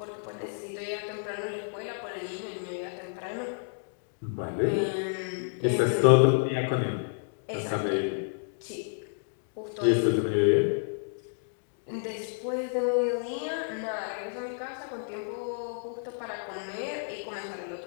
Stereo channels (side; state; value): right; silent; digital silence